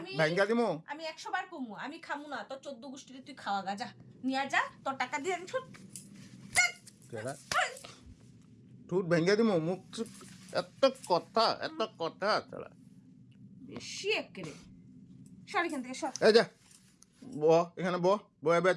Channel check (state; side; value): identical; both; correlation 1.00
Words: আমি- ভাঙ্গা দিমু। আমি 100 বার কমু, আমি খামু না তোর 14 গোষ্ঠীরে, তুই খাওয়া গা, যা নিয়া যা, তোর টাকা দিয়ে আমি কেডা? ঠোঁট ভেঙ্গে দিমু, মুখ এত কথা ছাড়া। বেশি একেরে। সর এখান থেকে, সর এই যা ব, এখানে ব, এবার